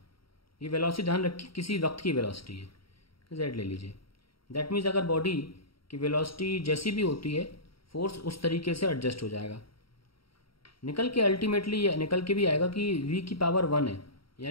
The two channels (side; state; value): right; late; 0.74 ms